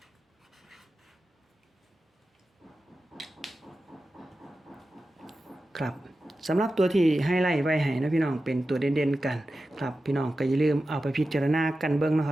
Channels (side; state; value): both; normal; correlation 0.93